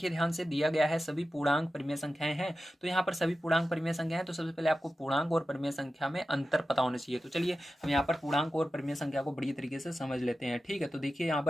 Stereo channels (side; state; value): both; normal; correlation 0.93